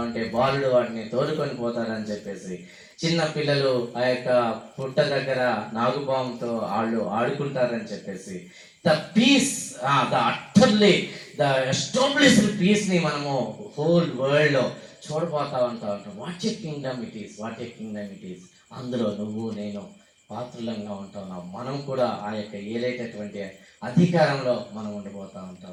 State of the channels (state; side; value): identical; both; correlation 1.00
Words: ఉంటే బాలుడు వాటిని తోలుకొని పోతారని చెప్పేసి, చిన్న పిల్లలు ఆ యొక్క పుట్ట దగ్గర నాగుపాముతో వాళ్ళు ఆడుకుంటారని చెప్పేసి, the peace, the utterly the established పీస్ని మనము హోల్ వరల్డ్లో చూడబోతా ఉంటాం. What a kingdom it is. అందులో నువ్వు నేను పాత్రలంగా ఉంటా ఉన్నాం. మనం కూడా ఆ యొక్క ఏలేటటువంటి అధికారంలో మనం ఉండిపోతూ ఉంటా